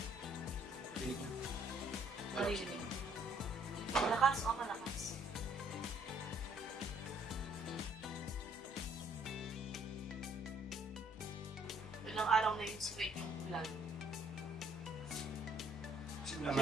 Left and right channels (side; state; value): both; normal; correlation 0.64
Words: Patinig na. Maririnig. Malakas o malakas? Ilang araw na yung straight yung ulan. Simula